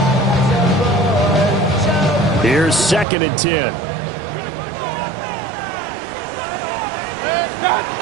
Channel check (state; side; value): drops out; left; at 3.1 s